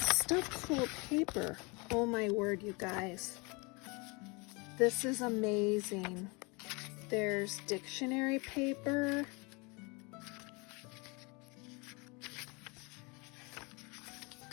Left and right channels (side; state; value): right; quieter; 28.8 dB